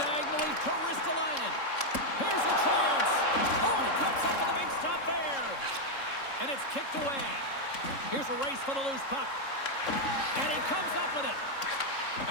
to Ristolainen. Here's a chance. Oh, he comes up with a big stop there. And it's kicked away. Here's a race for the loose puck. And he comes up with it.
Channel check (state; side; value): late; right; 3.7 ms